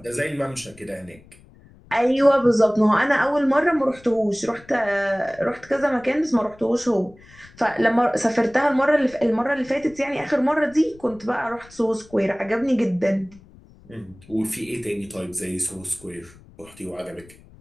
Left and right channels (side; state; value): left; noise; rumble, 24 dB below the sound